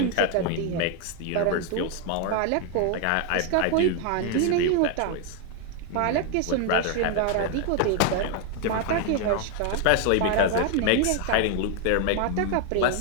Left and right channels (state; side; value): different; both; correlation 0.01